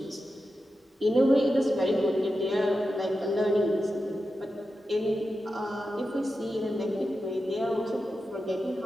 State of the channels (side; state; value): both; normal; correlation 0.90